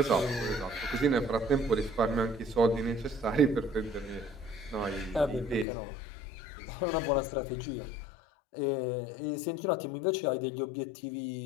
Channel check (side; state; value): right; drops out; at 5.7 s